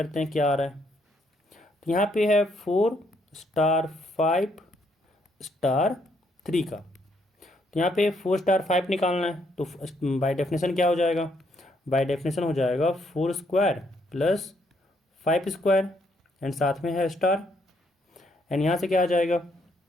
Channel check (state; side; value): normal; both; correlation 0.72